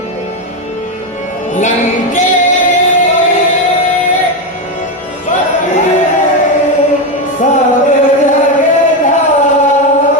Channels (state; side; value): normal; both; correlation 0.10